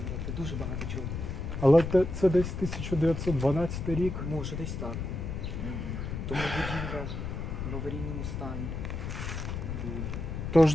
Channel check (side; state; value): left; noise; rumble, 4 dB below the sound